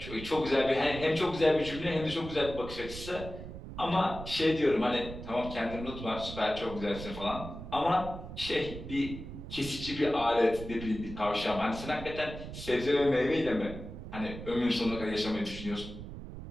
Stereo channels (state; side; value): noise; right; rumble, 10 dB below the sound